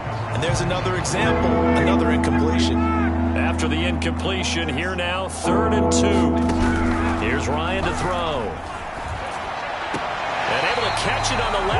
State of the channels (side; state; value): both; identical; correlation 1.00